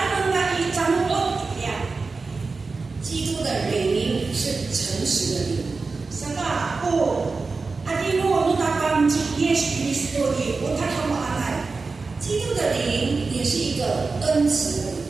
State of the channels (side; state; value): left; quieter; 4.1 dB